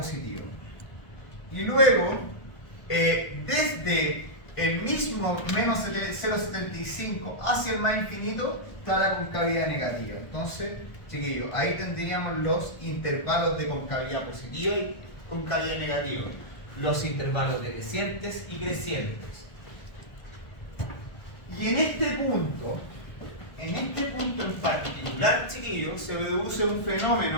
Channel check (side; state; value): right; late; 1.5 ms